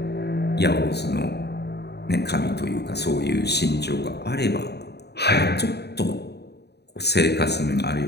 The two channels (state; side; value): late; right; 0.48 ms